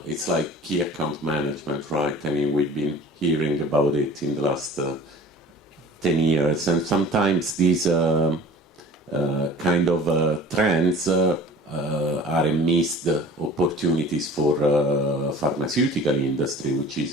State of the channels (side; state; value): both; normal; correlation 0.44